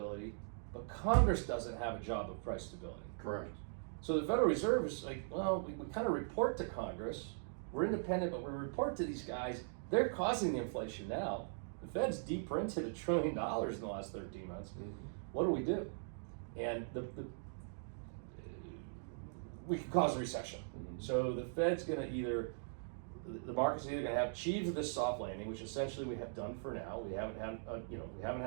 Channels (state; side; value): silent; left; digital silence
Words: but Congress doesn't have a job of price stability. Correct. So the Federal Reserve is like, well, we kind of report to Congress. We're independent, but we report to these guys. They're causing the inflation now. The Fed's de-printed $1 trillion in the last 13 months. What do we do? And we could cause a recession. So the Fed's going to the market's either going to have achieved this soft landing, which essentially we have done for now. We haven't